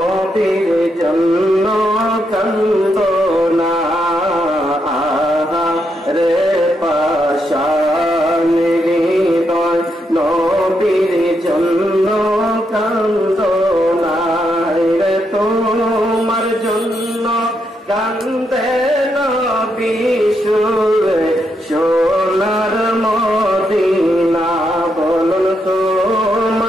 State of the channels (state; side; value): normal; both; correlation 0.80